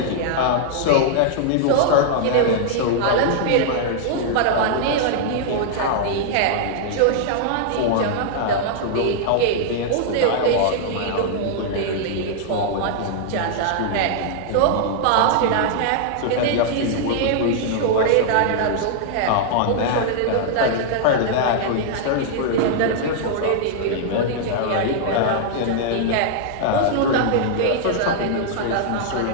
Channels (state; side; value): different; both; correlation -0.01